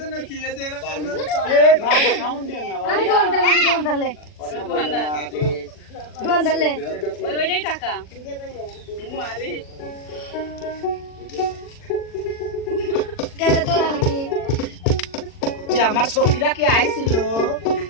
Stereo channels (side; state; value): right; late; 40 ms